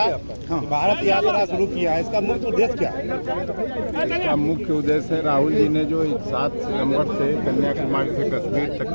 भारत यात्रा शुरू किया है, इसका मुख्य उद्देश्य क्या है? इसका मुख्य उद्देश्य है राहुल जी ने जो 7 सितंबर से कन्याकुमारी से कश्मीर तक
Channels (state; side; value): inverted; both; correlation -1.00